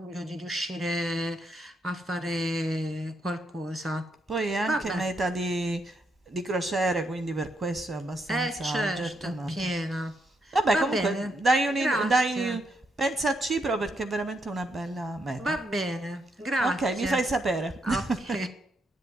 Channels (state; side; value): normal; both; correlation 0.78